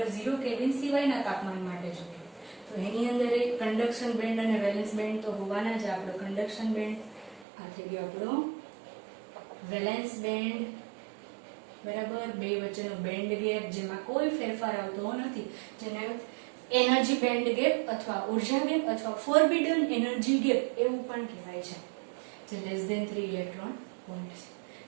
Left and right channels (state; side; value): drops out; left; at 7.5 s